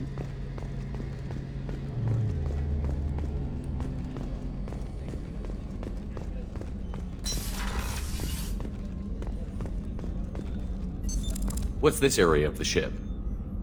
What's this area of the ship?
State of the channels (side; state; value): both; identical; correlation 1.00